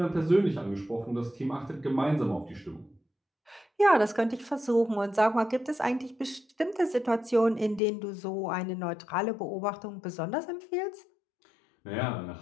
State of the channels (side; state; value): right; drops out; at 7.8 s